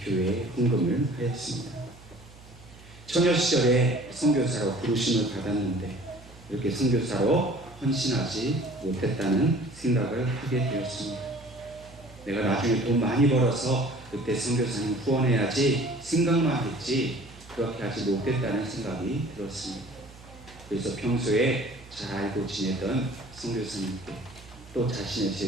교회에 헌금을 하였습니다. 처녀 시절에 선교사로 부르심을 받았는데 이렇게 선교사로 헌신하지 못했다는 생각을 하게 되었습니다. 내가 나중에 돈 많이 벌어서 그때 선교사님 후원해야지 생각만 했지 그렇게 하지 못했다는 생각이 들었습니다. 그래서 평소에 잘 알고 지내던 선교사님께 또 자신의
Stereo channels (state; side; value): noise; right; hum, 21 dB below the sound